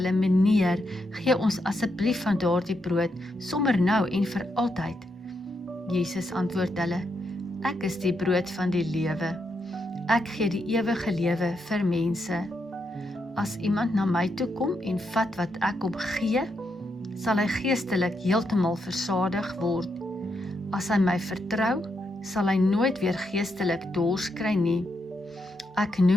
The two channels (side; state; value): both; normal; correlation 0.81